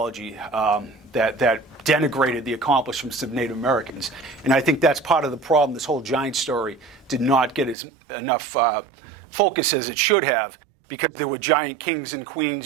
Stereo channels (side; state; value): left; drops out; at 7.8 s